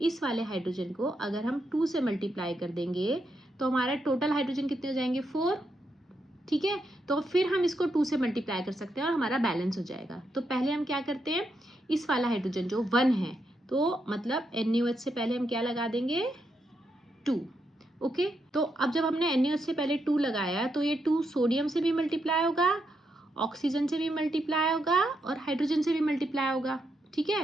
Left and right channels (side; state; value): both; normal; correlation 0.82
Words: इस वाले हाइड्रोजन को अगर हम 2 से मल्टीप्लाई कर देंगे तो हमारा टोटल हाइड्रोजन कितने हो जाएंगे? 4, ठीक है। तो फिर हम इसको 2 से मल्टीप्लाई कर सकते हैं और हमारा बैलेंस हो जाएगा। तो पहले हम क्या करते हैं? इस वाला हाइड्रोजन जो 1 है, तो मतलब NaOH से पहले हम क्या लगा देंगे? 2, ओके। तो अब जब हमने NaOH से पहले 2 लगाया तो ये 2 सोडियम से भी मल्टीप्लाई होगा, ऑक्सीजन से भी मल्टीप्लाई होगा और हाइड्रोजन से भी मल्टीप्लाई होगा, ठीक है।